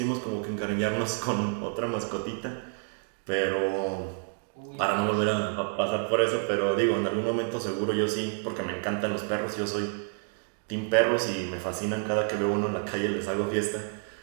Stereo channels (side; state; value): left; silent; 59 dB below the other